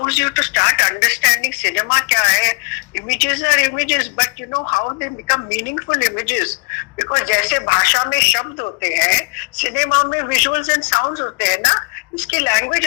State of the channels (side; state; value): right; quieter; 32.0 dB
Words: you to start understanding cinema क्या है. Images are images, but you know how they become meaningful images. Because जैसे भाषा में शब्द होते हैं, सिनेमा में visuals and sounds होते हैं ना, इसकी लैंग्वेज